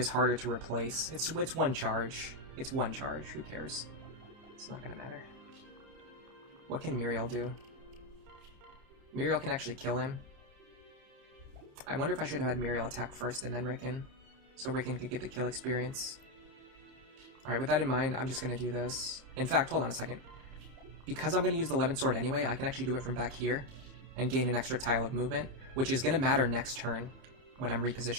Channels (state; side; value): late; left; 30 ms